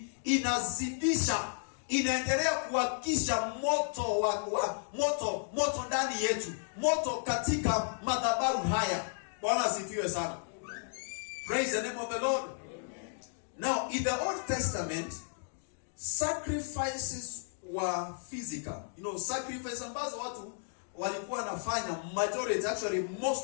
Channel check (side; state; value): right; silent; digital silence